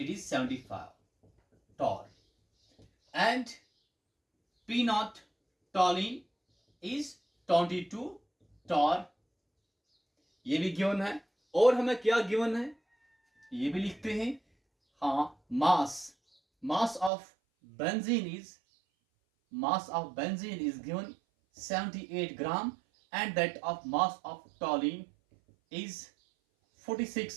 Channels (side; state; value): left; drops out; at 17.1 s